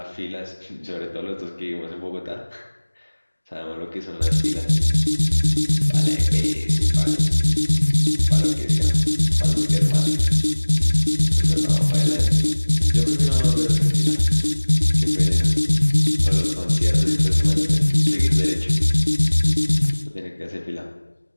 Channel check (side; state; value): both; inverted; correlation -1.00